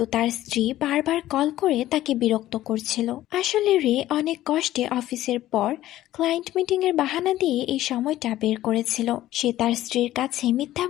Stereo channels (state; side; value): quieter; right; 14.4 dB